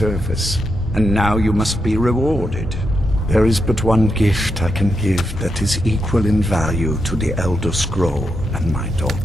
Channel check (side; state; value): both; normal; correlation 0.84